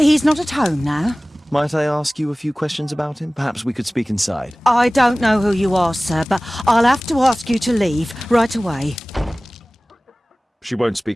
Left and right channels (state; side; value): normal; both; correlation 0.98